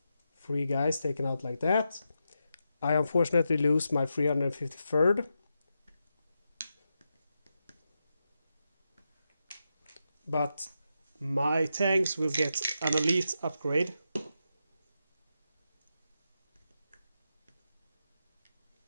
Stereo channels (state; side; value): inverted; both; correlation -0.86